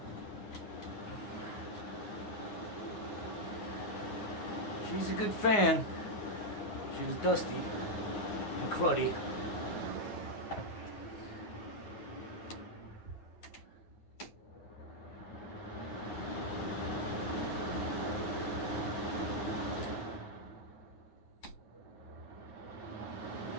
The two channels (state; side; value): late; right; 9.6 ms